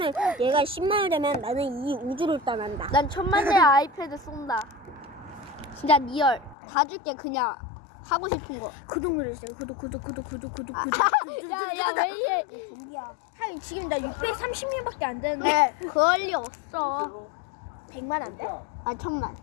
얘가 10만을 되면 나는 이 우주를 떠난다. 난 1000만 대 아이패드 쏜다. 진짜 리얼. 다 줄게, 그냥. 하고 싶은 거. 구독 누르세요. 구독. 야, 왜 이래? 좀비야. 지금 나 630명밖에 안 되는데 그럴 리 없어. 100만 안 돼? 1000만.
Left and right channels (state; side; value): drops out; right; at 6.6 s